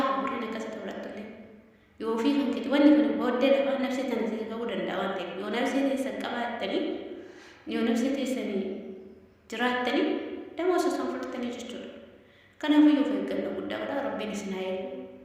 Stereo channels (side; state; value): both; identical; correlation 1.00